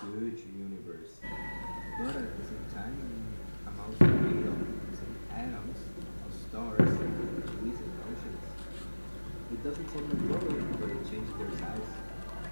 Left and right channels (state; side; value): inverted; both; correlation -1.00